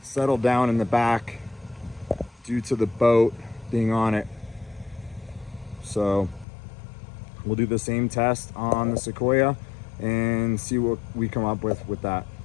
settled down in the back due to the boat being on it. So we'll do the same test on the Sequoia and see what we come up with that.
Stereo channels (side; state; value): right; drops out; at 6.5 s